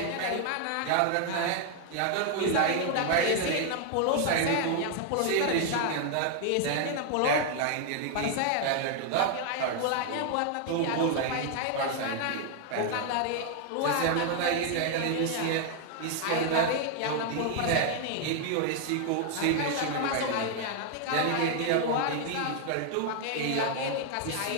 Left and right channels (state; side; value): different; both; correlation 0.00